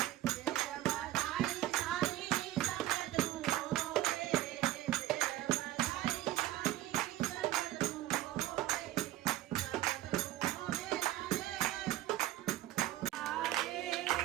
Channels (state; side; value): quieter; left; 14.8 dB